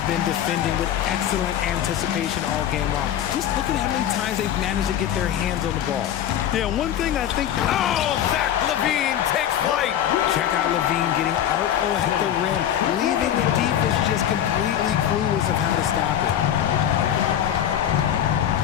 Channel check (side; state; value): right; quieter; 10.5 dB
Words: been defending with excellent anticipation all game long. Just look at how many times they've managed to get their hands on the ball. Yeah, one thing I think... Oh, Zach Levine takes flight. Check out Levine getting artful at the rim, leaving the defense just completely clueless of how to stop it.